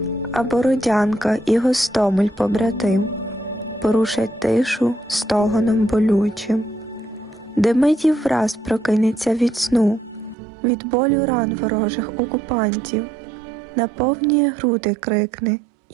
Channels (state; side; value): drops out; left; at 10.4 s